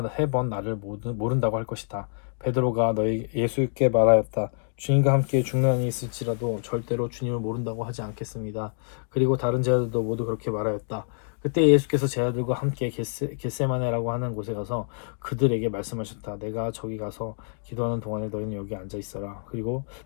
3번 나를 모른다고 할 것이다. 베드로가 너희 예수께 말하였다. 주님과 함께 죽는 한이 있을지라도 절대로 주님을 모른다고 하지 않겠습니다. 그리고 다른 제자들도 모두 그렇게 말하였다. 그때 예수께서 제자들과 함께 겟세마네라고 하는 곳에 가서 그들에게 말씀하셨다. 내가 저기 가서 기도하는 동안에 너희는 여기 앉아 있어라. 그리고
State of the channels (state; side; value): silent; right; digital silence